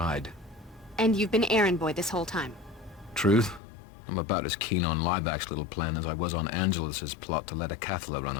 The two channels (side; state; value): right; drops out; at 3.6 s